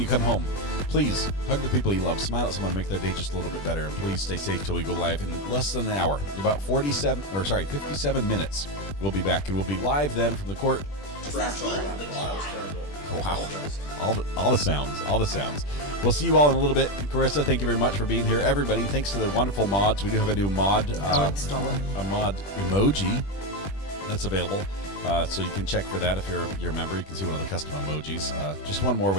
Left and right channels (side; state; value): right; late; 20 ms